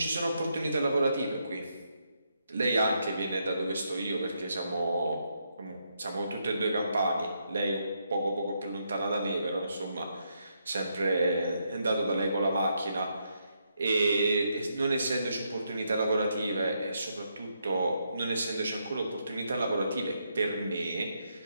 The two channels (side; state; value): both; inverted; correlation -0.79